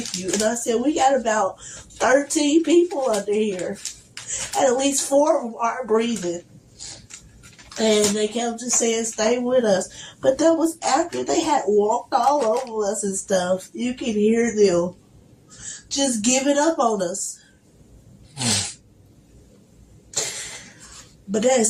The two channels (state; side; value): identical; both; correlation 1.00